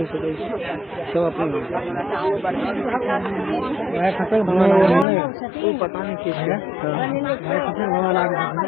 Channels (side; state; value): right; drops out; at 5.1 s